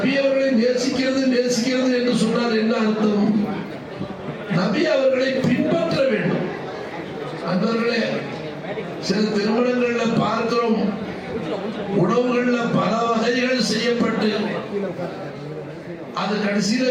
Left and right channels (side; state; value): both; identical; correlation 1.00